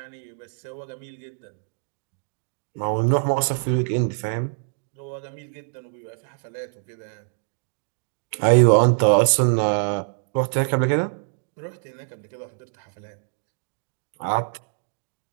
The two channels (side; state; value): left; silent; digital silence